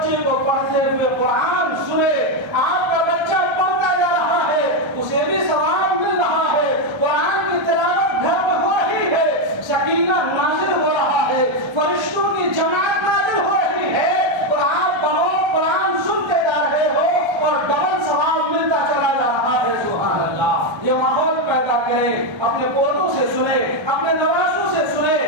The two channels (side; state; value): left; late; 1.3 ms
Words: کو پڑھتے ہوئے قرآن سنے. آپ کا بچہ پڑھتا جا رہا ہے، اسے بھی ثواب مل رہا ہے، قرآن کی تلاوت گھر میں ہو رہی ہے، سکینہ نازل ہو رہا ہے، فرشتوں کی جماعت نازل ہو رہی ہے، اور آپ بہت قرآن سنتے جا رہے ہو اور ڈبل ثواب ملتا چلا جا رہا ہے. سبحان اللہ. یہ ماحول پیدا کریں، اپنے پودوں سے سنیں، اپنے نوازوں سے